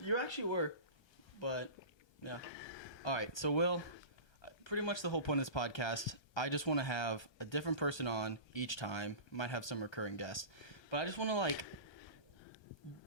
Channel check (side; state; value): right; late; 1.3 ms